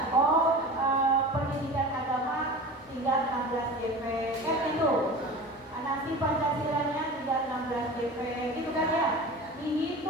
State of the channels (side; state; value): both; normal; correlation 0.34